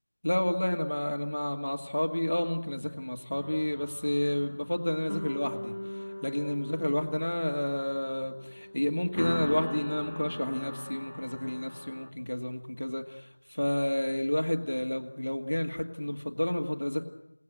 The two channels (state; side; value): inverted; both; correlation -1.00